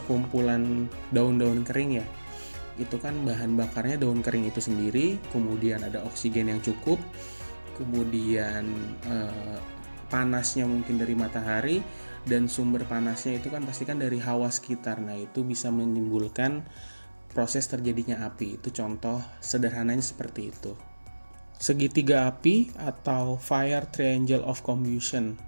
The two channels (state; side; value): inverted; both; correlation -1.00